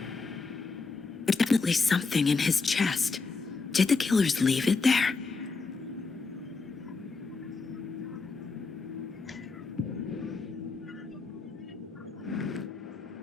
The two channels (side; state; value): right; quieter; 4.3 dB